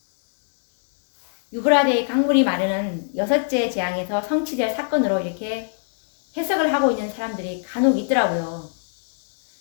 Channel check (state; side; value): silent; right; digital silence